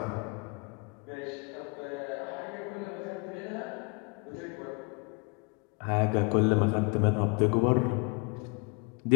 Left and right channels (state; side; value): quieter; right; 31.9 dB